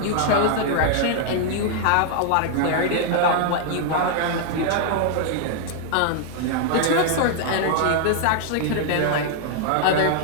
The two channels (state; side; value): different; both; correlation 0.00